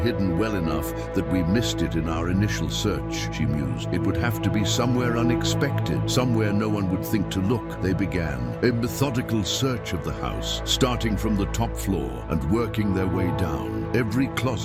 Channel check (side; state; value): both; identical; correlation 1.00